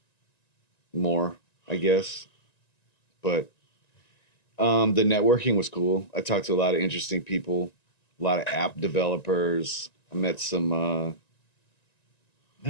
more, I guess, but the networking was cool. I talked to a lot of interesting people, a lot of app developers. I met a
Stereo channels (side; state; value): right; late; 1.9 ms